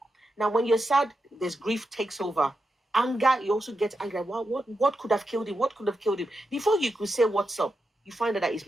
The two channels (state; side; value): normal; both; correlation 0.87